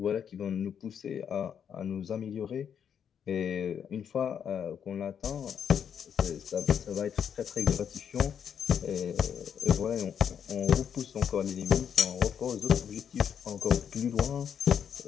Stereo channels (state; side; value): quieter; right; 8.1 dB